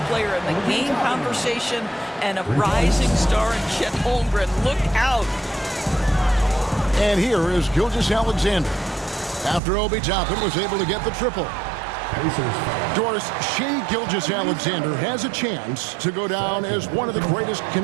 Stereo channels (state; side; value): drops out; left; at 9.6 s